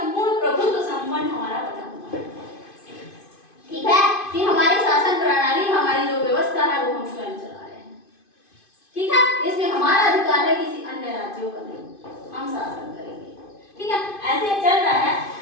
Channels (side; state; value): right; late; 2.5 ms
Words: प्रभुत्व संपन्न हमारा बना हुआ है, ठीक है, कि हमारी शासन प्रणाली, हमारी जो व्यवस्था है वो हम स्वयं चला रहे हैं, ठीक है। इसमें हमारा अधिकार है, किसी अन्य राज्यों का नहीं, हम शासन करेंगे, ठीक है। ऐसे चल रहा है।